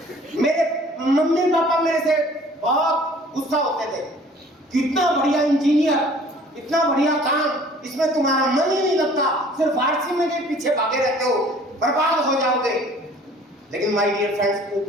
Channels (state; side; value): normal; both; correlation 0.52